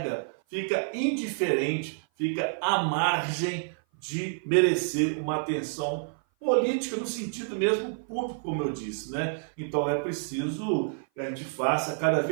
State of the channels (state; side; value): silent; left; 56 dB below the other